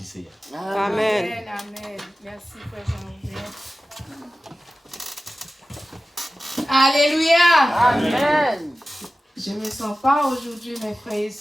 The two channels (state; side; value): normal; both; correlation 0.95